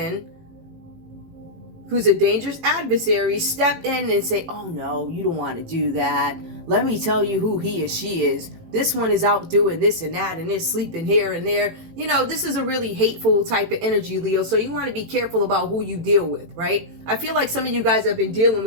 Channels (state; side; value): late; left; 18 ms